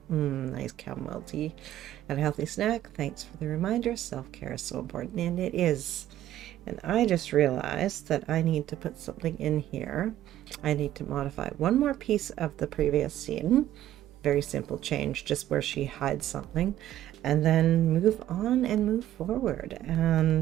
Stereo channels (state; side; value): quieter; left; 12.8 dB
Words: nice chamomile tea, and a healthy snack. Thanks for the reminder. Self-care is so important, and it is. And I just realized that I need to put something in here. I need to modify one more piece of the previous scene. Very simple change, just where she hides something, and then move on and move forward.